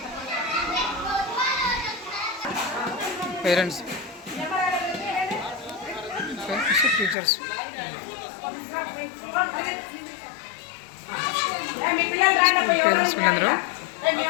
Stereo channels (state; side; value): drops out; right; at 7.2 s